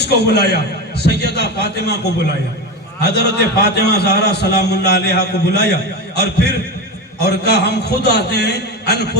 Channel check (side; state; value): both; normal; correlation 0.21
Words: کو بلایا سیدہ فاطمہ کو بلایا حضرت فاطمہ زہرا سلام اللہ علیہا کو بلایا اور پھر اور کہا ہم خود آتے ہیں